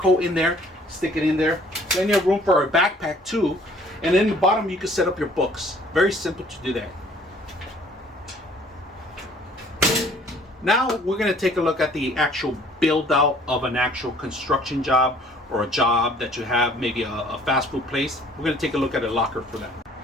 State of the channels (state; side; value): normal; both; correlation 0.56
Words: in there, stick it in there. Plenty of room for a backpack too. And then the bottom, you can set up your books. Very simple to do that. Now we're going to take a look at the actual build out of an actual construction job or a job that you have, maybe a fast food place. We're going to take a look at a locker for that.